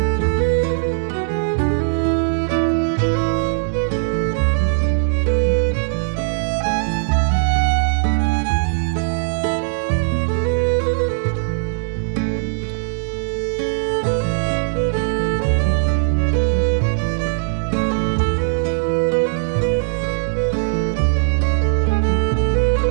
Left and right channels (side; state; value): left; silent; digital silence